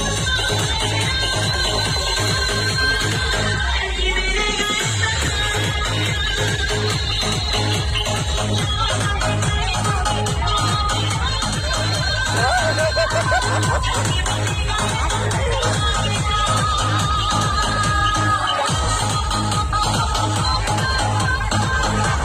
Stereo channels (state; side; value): identical; both; correlation 1.00